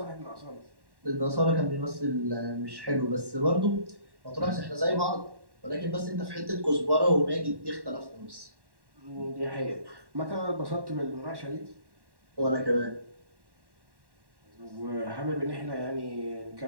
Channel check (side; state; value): left; late; 1.1 ms